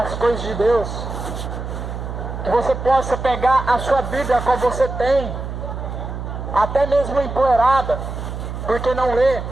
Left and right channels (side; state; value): right; noise; hum, 7 dB below the sound